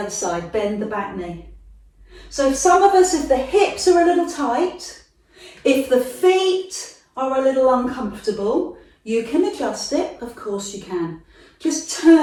side. Bend the back knee. So some of us, if the hips are a little tight, if the feet are a little uncomfortable, you can adjust it. Of course you can. Just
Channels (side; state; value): both; identical; correlation 1.00